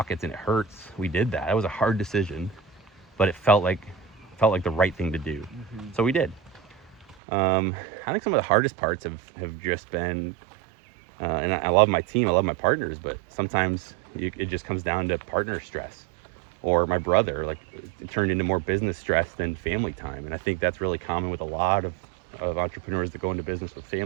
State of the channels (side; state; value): left; drops out; at 7.2 s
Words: and it hurts, we did that. It was a hard decision, but it felt like the right thing to do. Mm-hmm. So we did. I think some of the hardest parts have just been, and I love my team, I love my partners, but sometimes it just comes down to partner stress. Or my brother, it turned into more business stress than family time. And I think that's really common with a lot of entrepreneurs that go into business with